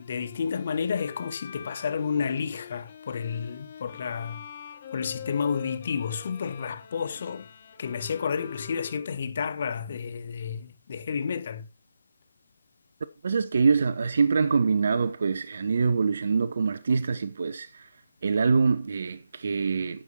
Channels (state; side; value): inverted; both; correlation -0.84